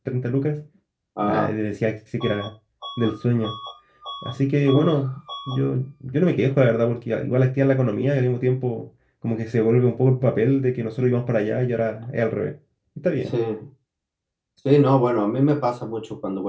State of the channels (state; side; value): identical; both; correlation 1.00